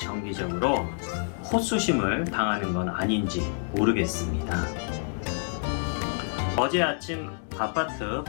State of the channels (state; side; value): silent; right; 60 dB below the other